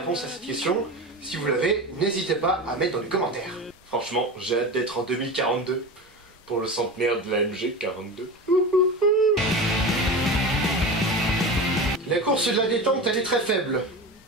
à cette question. Si vous l'avez, n'hésitez pas à mettre dans les commentaires. Franchement, j'ai hâte d'être en 2042 pour le centenaire de la MG42. La course de la détente, elle est très faible.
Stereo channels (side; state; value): both; normal; correlation 0.27